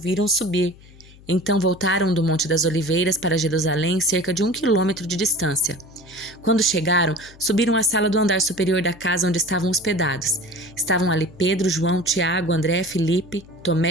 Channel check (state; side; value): noise; left; hum, 23 dB below the sound